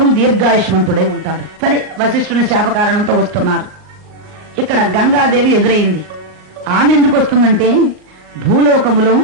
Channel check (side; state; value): left; late; 38 ms